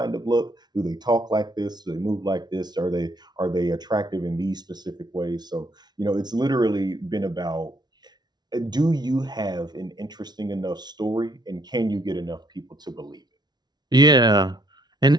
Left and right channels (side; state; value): left; late; 0.20 ms